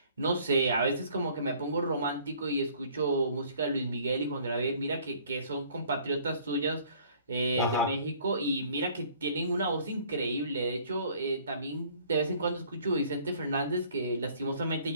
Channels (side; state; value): both; inverted; correlation -0.56